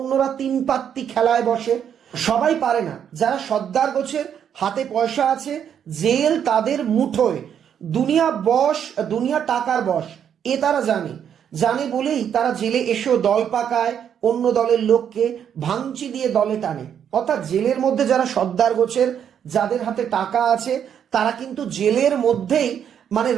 3 পাত্তি খেলায় বসে। সবাই পারে না, যারা সর্দার গোছের হাতে পয়সা আছে, জেল তাদের মুঠোয়, দুনিয়া টাকার বশ, এ তারা জানে বলেই তারা জেলে এসেও দল পাকায়, অন্য দলের লোককে ভাঙচি দিয়ে দলে টানে। অর্থাৎ জেলের মধ্যে যারা সর্দার গোছের, যাদের হাতে টাকা আছে, তারা কিন্তু জেলের মধ্যেই মানে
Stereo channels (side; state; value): left; quieter; 8.6 dB